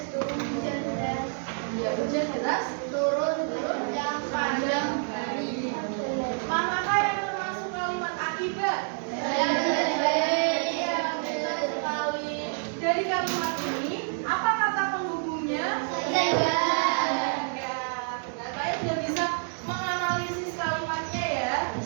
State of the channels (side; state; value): left; silent; 55 dB below the other